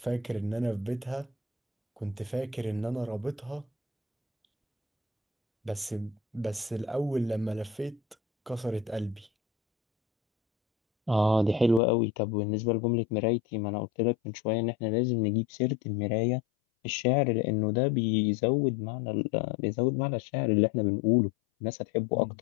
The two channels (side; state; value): right; drops out; at 11.8 s